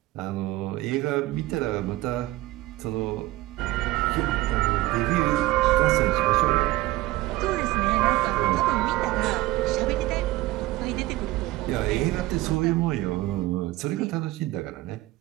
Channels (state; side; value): quieter; left; 17.8 dB